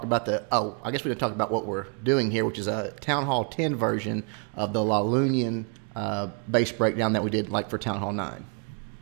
about I guess we're going to talk about what we're doing here, which is a Town Hall 10 version of the Lavaloonian base breakdown that we did like for Town Hall 9.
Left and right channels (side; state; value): left; quieter; 38.4 dB